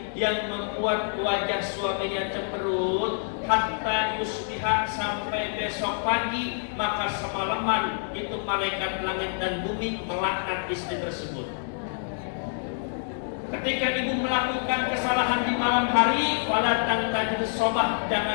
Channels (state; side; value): silent; right; digital silence